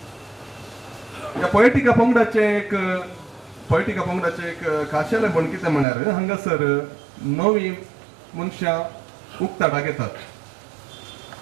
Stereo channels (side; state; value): left; drops out; at 5.9 s